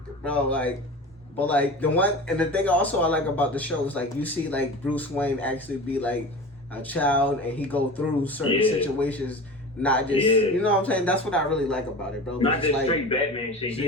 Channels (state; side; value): normal; both; correlation 0.33